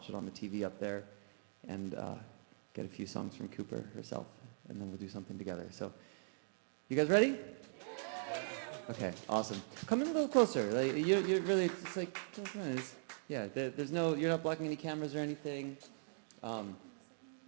it on the TV up there and get a few songs from Cooper herself, and then we'll do something together. So, you guys ready? Okay, awesome. Come in a little closer. Like you're really, it's like, there's no, you're not blocking any cameras or anything.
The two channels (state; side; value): silent; left; digital silence